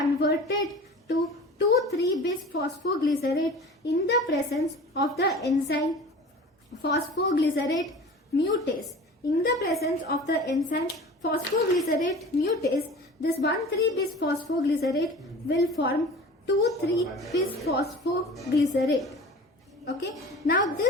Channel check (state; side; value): normal; both; correlation 0.39